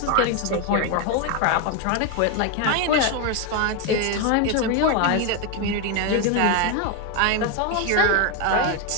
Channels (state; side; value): different; both; correlation 0.02